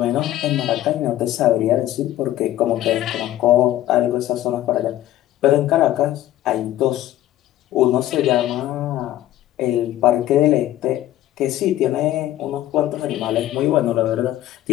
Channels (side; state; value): right; quieter; 13.8 dB